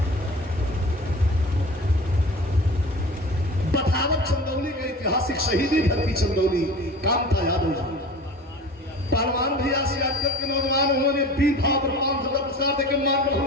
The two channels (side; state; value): both; normal; correlation 0.38